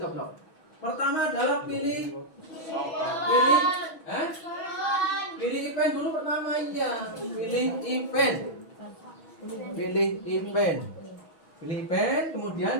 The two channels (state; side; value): late; right; 6.2 ms